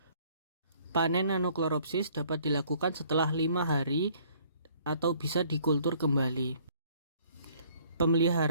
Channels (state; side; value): inverted; both; correlation -0.60